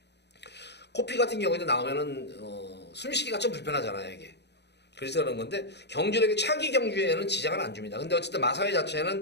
코피 같은 경우에도 나오면은 숨쉬기가 좀 불편하잖아요, 이게. 그래서 그런 건데 경주력이 차기 경주에는 지장을 안 줍니다. 근데 어쨌든 마사회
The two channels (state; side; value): late; right; 0.50 ms